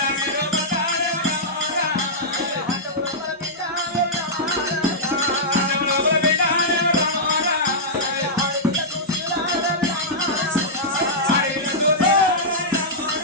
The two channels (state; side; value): normal; both; correlation -0.11